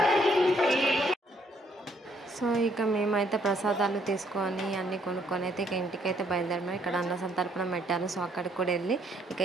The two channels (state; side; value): normal; both; correlation 0.68